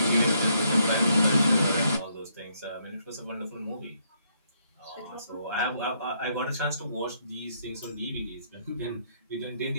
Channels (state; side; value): inverted; both; correlation -0.73